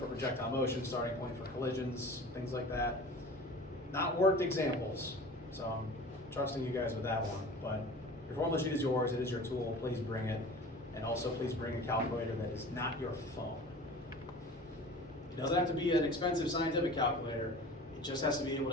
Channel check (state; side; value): normal; both; correlation 0.39